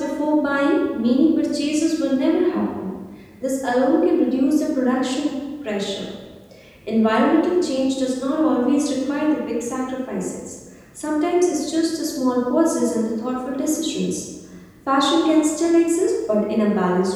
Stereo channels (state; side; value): identical; both; correlation 1.00